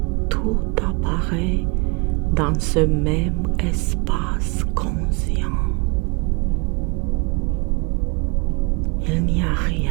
tout apparaît dans ce même espace conscient. Il n'y a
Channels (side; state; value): left; quieter; 29.1 dB